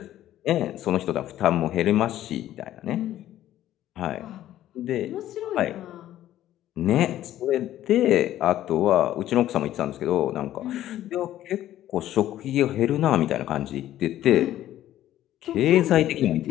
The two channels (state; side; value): quieter; right; 12.9 dB